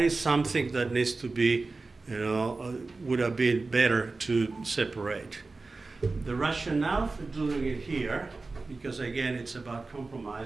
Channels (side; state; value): left; quieter; 3.7 dB